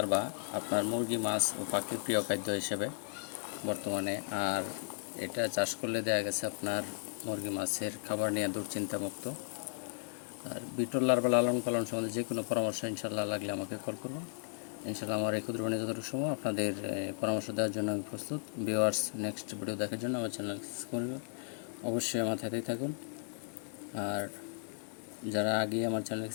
আপনার মুরগি, মাছ ও পাখির প্রিয় খাদ্য হিসেবে বর্তমানে, আর এটা চাষ করলে দেখা গেছে আপনার মুরগি মাছের খাবার নিয়ে দুশ্চিন্তামুক্ত। আর বিটল লার্ভা লালন পালন সম্বন্ধে যে কোনো পরামর্শ ইনশাল্লাহ লাগলে আমাকে কল করুন। ইনশাল্লাহ আমার এই ক্ষুদ্র যতটুকু সময় আপনাদের পরামর্শ দেওয়ার জন্য আমি প্রস্তুত। ভিউয়ার্স, নেক্সট ভিডিও দেখার জন্য আমার চ্যানেল সাবস্ক্রাইব করবেন, অবশ্যই আমার সাথেই থাকুন। আর যারা আগে আমার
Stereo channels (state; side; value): silent; right; digital silence